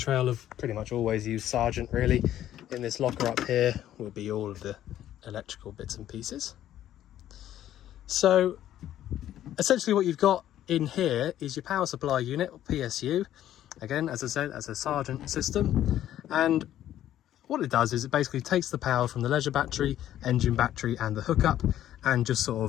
have pretty much always used Sargent really. In this locker up here will be all of the electrical bits and pieces. So essentially what you've got in here is your power supply unit, or PSU. Again, as I said, as a Sargent system. And what it does is it basically takes the power from the leisure battery, engine battery and the hookup, and just sort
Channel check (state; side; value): quieter; right; 12.1 dB